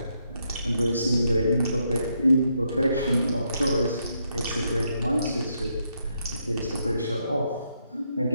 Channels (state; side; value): inverted; both; correlation -0.78